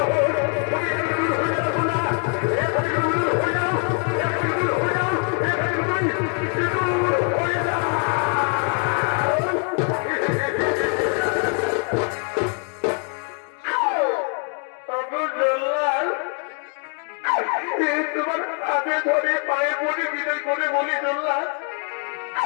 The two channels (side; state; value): right; quieter; 38.8 dB